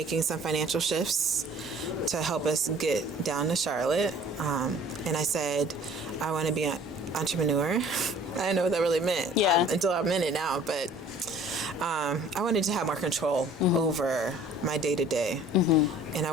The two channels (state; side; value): normal; both; correlation 0.51